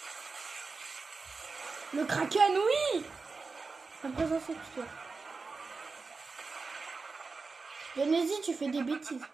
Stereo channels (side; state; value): left; quieter; 4.3 dB